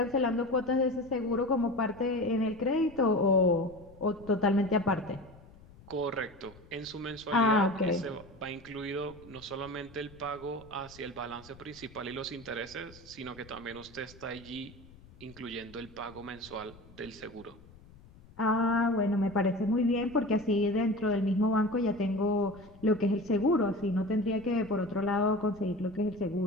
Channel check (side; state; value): left; noise; rumble, 22 dB below the sound